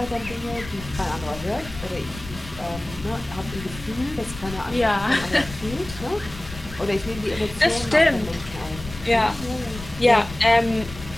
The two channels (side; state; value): left; noise; rumble, 14 dB below the sound